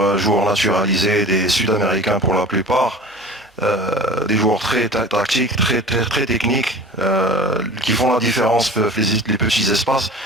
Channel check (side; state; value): both; normal; correlation 0.40